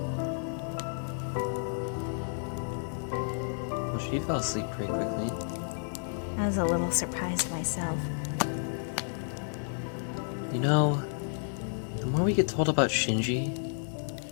Well, she fell asleep pretty quickly. I was a little surprised myself. You know, the more we get told about Shinji,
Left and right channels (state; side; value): silent; right; digital silence